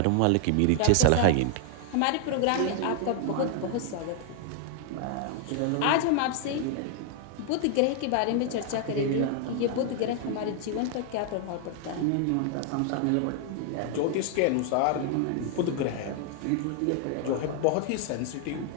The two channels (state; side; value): different; both; correlation 0.00